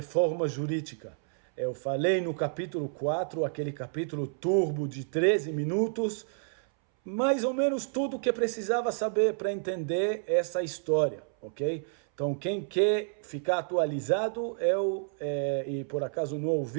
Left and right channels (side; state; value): left; silent; 58 dB below the other